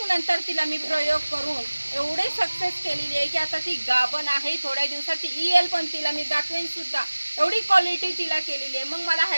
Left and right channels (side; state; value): both; inverted; correlation -1.00